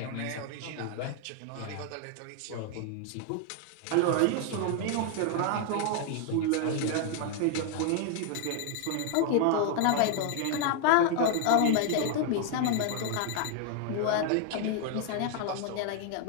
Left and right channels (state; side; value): different; both; correlation 0.00